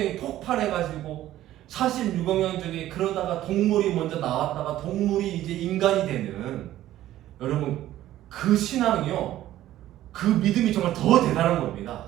폭발해가지고 46억 년 전에 그러다가 동물이 먼저 나왔다가 동물이 이제 인간이 되는, 여러분 그 신앙이요, 그 믿음이 정말 더 대단한 겁니다.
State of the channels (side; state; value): left; quieter; 13.8 dB